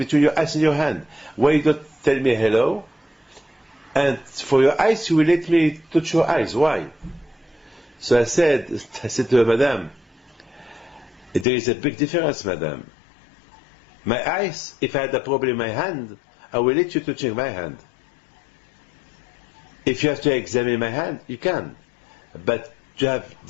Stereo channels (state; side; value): drops out; right; at 11.5 s